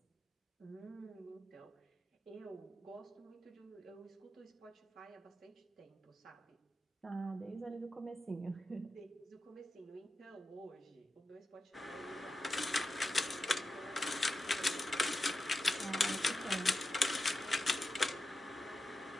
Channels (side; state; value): both; normal; correlation 0.90